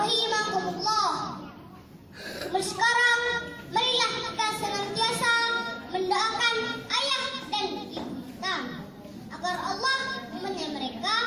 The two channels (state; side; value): identical; both; correlation 1.00